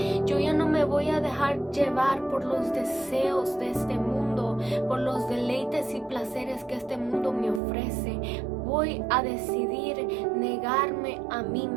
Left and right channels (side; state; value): left; drops out; at 7.6 s